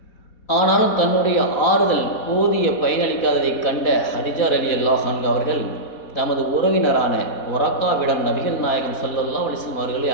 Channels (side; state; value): right; late; 4.0 ms